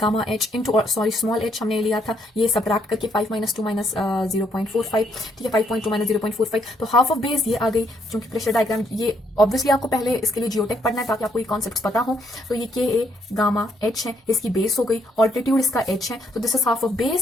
h into sorry small h हमने लिया था, ये सबट्रैक्ट करके 5 - 2 - 0.45। ठीक है, 5.2 - 0.45, तो हाफ ऑफ बेस ये आ गई। क्योंकि प्रेशर डायग्राम ये ऑब्वियसली आपको पहले इसके लिए जियोटेक पढ़ना है ताकि आपको ये कॉन्सेप्ट पता हो। तो ये के ए गामा एच है, इसकी बेस हो गई, ऑल्टीट्यूड इसका एच है, तो this is half of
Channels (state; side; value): normal; both; correlation 0.71